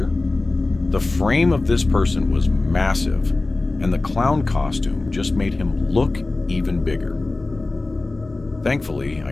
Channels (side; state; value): right; quieter; 3.2 dB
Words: The frame of this person was massive, and the clown costume just made him look even bigger. Thankfully,